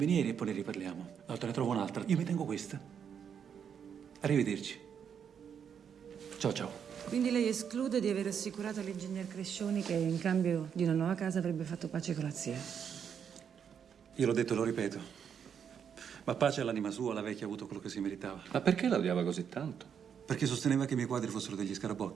e poi ne riparliamo. Allora te ne trovo un'altra. Io mi tengo questa. Arrivederci. Ciao, ciao. Quindi lei esclude di aver assicurato all'ingegner Crescioni che in cambio di una nuova casa avrebbe fatto pace con la zia? Io l'ho detto e lo ripeto. Ma pace all'anima sua, la vecchia ha avuto quello che si meritava. Ma perché la odiava così tanto? Perché sosteneva che i miei quadri fossero degli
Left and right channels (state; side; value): quieter; left; 7.7 dB